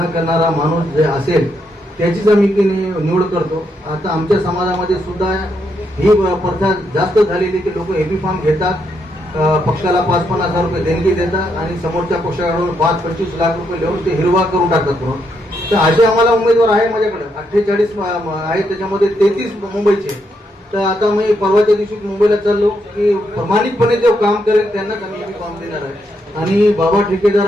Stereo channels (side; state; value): both; normal; correlation 0.78